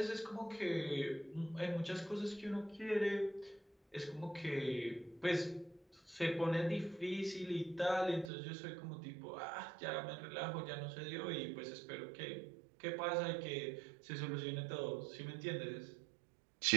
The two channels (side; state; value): left; drops out; at 8.3 s